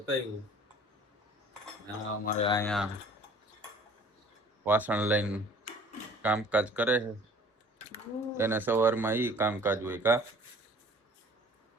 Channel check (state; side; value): normal; both; correlation 0.50